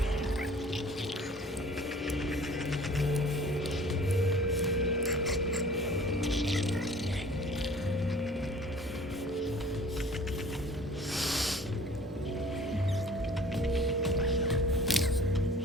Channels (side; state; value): both; normal; correlation 0.49